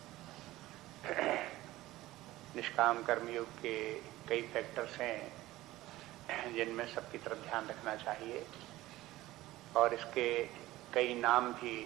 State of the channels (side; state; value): left; quieter; 17.0 dB